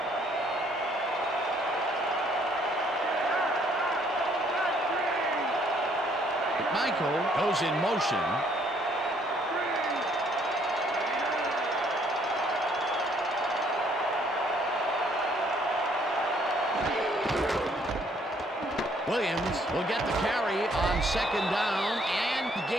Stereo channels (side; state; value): both; normal; correlation 0.65